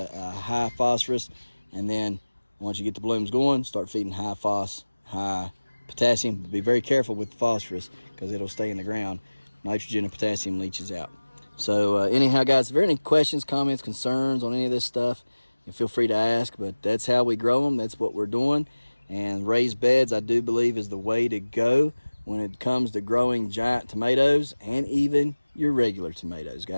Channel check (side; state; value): both; inverted; correlation -1.00